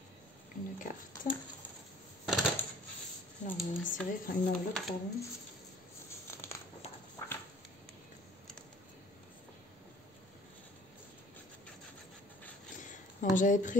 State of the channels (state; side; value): normal; both; correlation 0.52